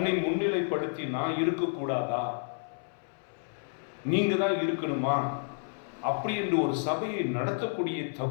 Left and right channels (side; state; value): right; silent; 58 dB below the other